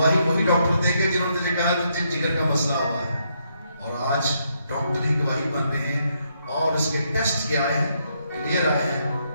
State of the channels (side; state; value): both; inverted; correlation -0.76